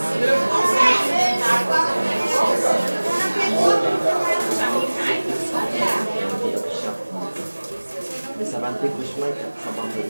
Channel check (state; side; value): inverted; both; correlation -1.00